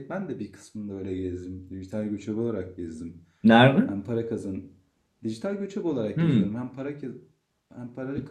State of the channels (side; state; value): both; identical; correlation 1.00